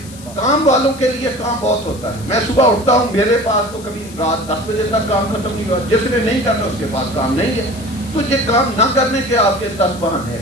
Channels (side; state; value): left; noise; hiss, 19 dB below the sound